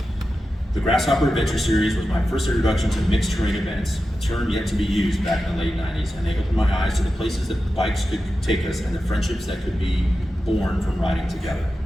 The Grasshopper Adventure Series was my first introduction to mixed-terrain events, a term yet to be used back in the late 90s, and they opened my eyes to the places that bikes could take us and the friendships that could be born from riding together.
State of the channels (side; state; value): both; normal; correlation 0.92